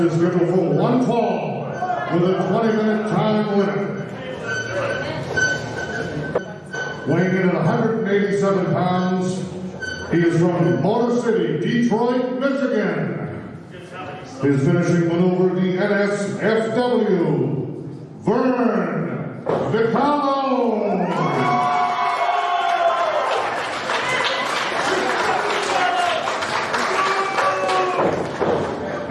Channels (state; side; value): identical; both; correlation 1.00